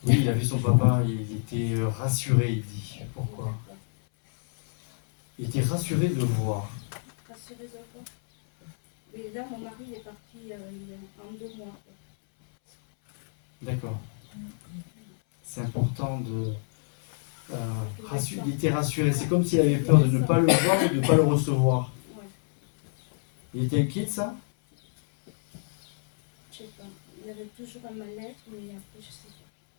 Oui, il a vu son papa, il était rassuré, il dit. Pourquoi? Il était rassuré de le voir. Rassuré de quoi? Mais là, mon mari est parti en 2 mois. D'accord. C'est important de... il était rassuré. C'est comme s'il avait peur de ne pas le voir ou de ne pas le recevoir. Ouais. Il était inquiet de ça? Je sais pas. Il avait toujours un mal-être, mais après, je sais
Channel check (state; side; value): silent; right; 60 dB below the other